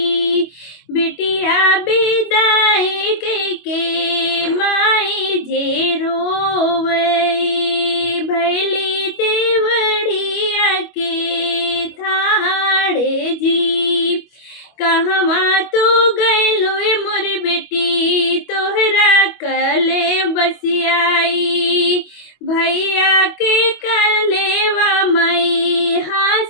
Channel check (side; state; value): right; late; 25 ms